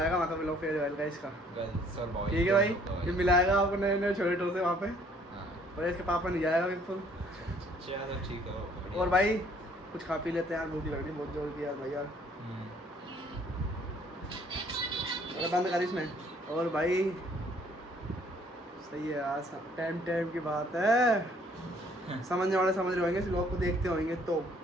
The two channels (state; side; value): normal; both; correlation 0.61